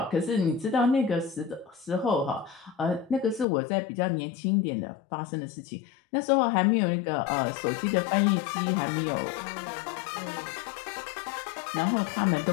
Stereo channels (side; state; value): right; drops out; at 3.5 s